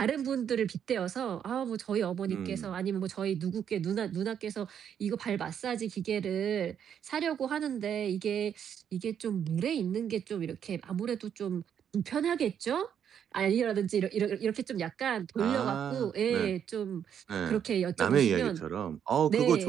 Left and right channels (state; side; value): quieter; left; 8.6 dB